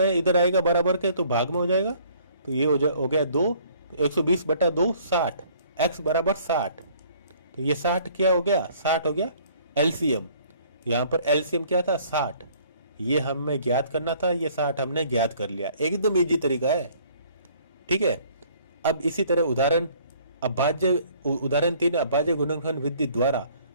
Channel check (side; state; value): both; inverted; correlation -0.58